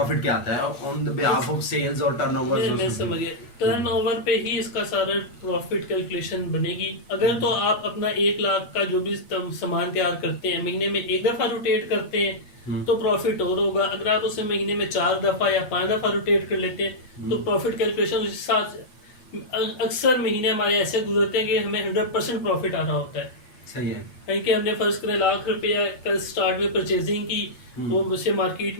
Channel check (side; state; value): right; late; 8.3 ms